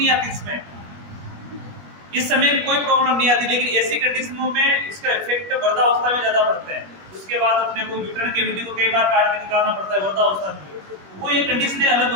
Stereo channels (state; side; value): late; left; 21 ms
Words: आती, इस समय कोई प्रॉब्लम नहीं आती, लेकिन ऐसी कंडीशनों में इसका इफेक्ट वृद्धावस्था में ज्यादा पड़ता है। उसके बाद अपने को यूट्रन कैविटी को कई बार काट के निकालना पड़ता है वृद्धावस्था में, वो ये कंडीशनें अलग